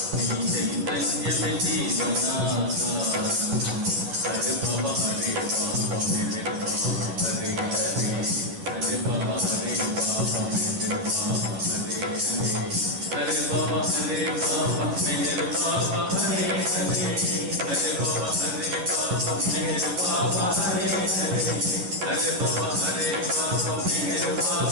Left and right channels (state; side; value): late; left; 11 ms